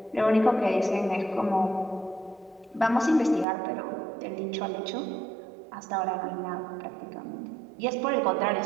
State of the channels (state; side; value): drops out; left; at 3.5 s